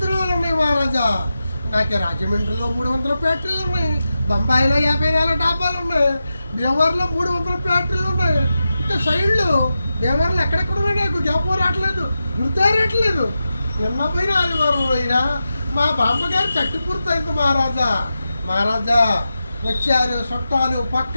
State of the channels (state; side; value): inverted; both; correlation -0.91